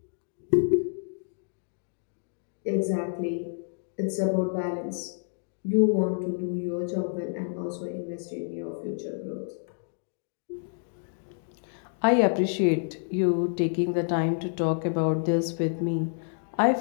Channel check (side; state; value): right; silent; digital silence